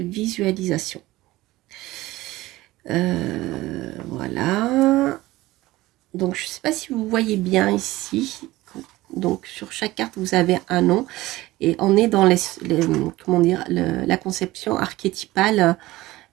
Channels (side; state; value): left; quieter; 18.1 dB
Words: Voilà. Donc je ne sais pas si vous voyez bien ici. Donc sur chaque carte, vous avez un nom. Et on est dans comment dire, la conception archétypale